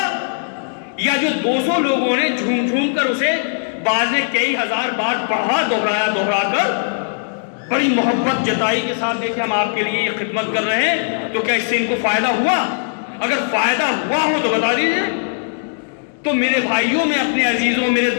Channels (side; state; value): right; silent; digital silence